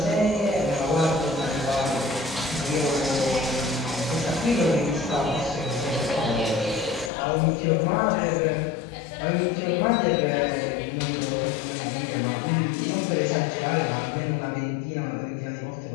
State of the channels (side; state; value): right; drops out; at 7.1 s